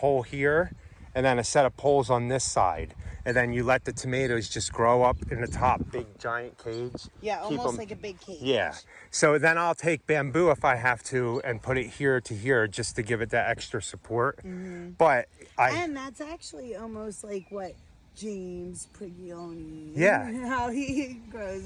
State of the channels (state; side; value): identical; both; correlation 1.00